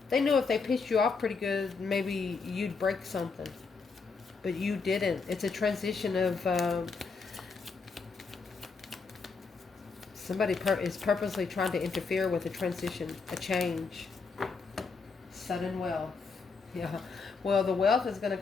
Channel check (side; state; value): right; quieter; 4.7 dB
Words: they knew if they pissed you off pretty good, maybe you'd break something. But you didn't. It's a transition of somebody is purposely trying to interfere with a transition, a change. Sudden wealth. Yeah. Well, the wealth is going